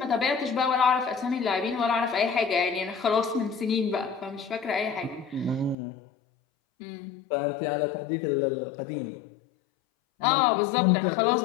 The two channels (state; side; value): drops out; right; at 5.8 s